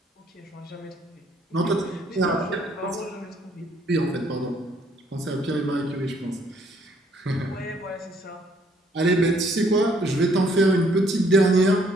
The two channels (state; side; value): normal; both; correlation 0.66